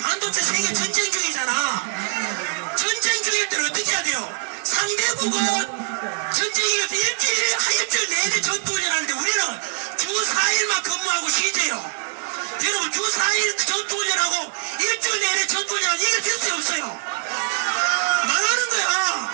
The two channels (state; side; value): silent; left; 60 dB below the other